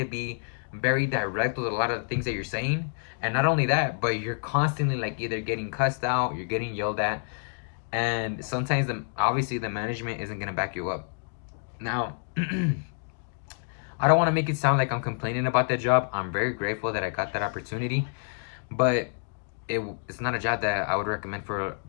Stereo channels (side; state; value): right; silent; digital silence